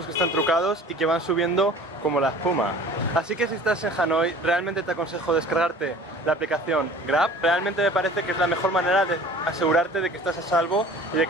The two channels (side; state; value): both; normal; correlation 0.46